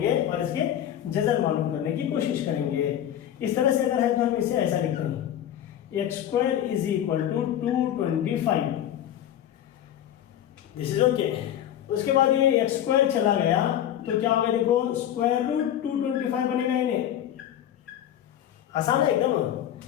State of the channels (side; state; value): right; quieter; 10.9 dB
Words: और इसके जज़र मालूम करने की कोशिश करेंगे। इस तरह से अगर है तो हम इसे ऐसा लिखते हैं, x square is equal to 225, this is okay. उसके बाद ये x स्क्वायर चला गया तो क्या होगा, देखो स्क्वायर रूट 225 बनेगा, इन्हें आसान है एकदम,